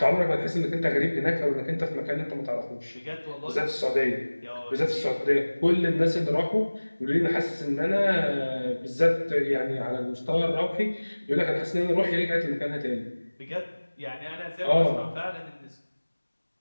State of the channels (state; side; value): inverted; both; correlation -1.00